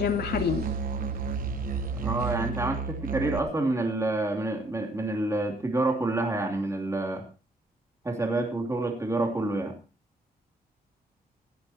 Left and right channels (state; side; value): normal; both; correlation 0.63